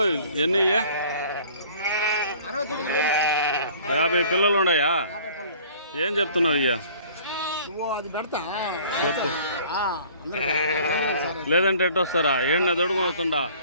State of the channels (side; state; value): both; inverted; correlation -0.51